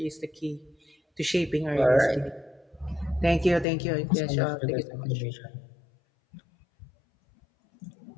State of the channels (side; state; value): right; drops out; at 3.7 s